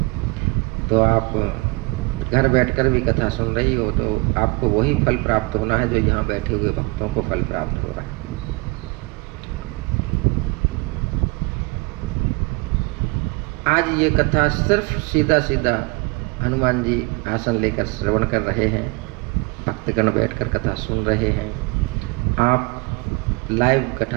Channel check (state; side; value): quieter; left; 27.2 dB